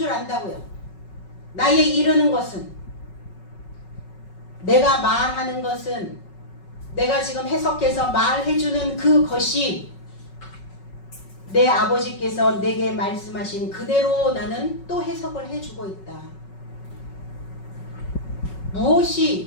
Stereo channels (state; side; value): late; right; 5.4 ms